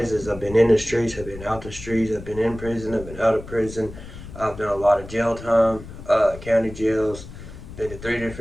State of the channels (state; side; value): noise; left; rumble, 14 dB below the sound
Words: is I've been in the streets, I've been out the streets, I've been in prison, I've been out of prison. I've done a lot of jail time, county jails. Been to 3